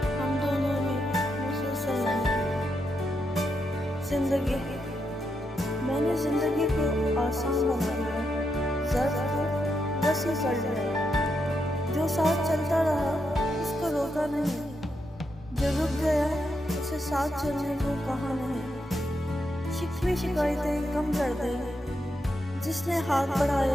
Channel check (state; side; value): normal; both; correlation 0.83